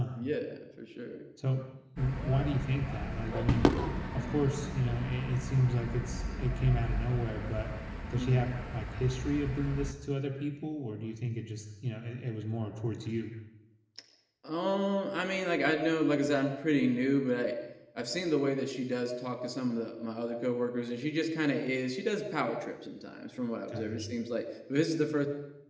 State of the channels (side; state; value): both; identical; correlation 1.00